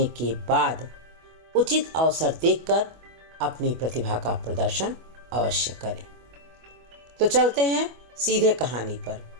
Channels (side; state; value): left; late; 25 ms